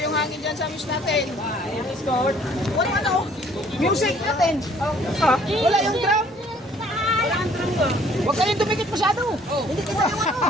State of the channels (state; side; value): normal; both; correlation 0.58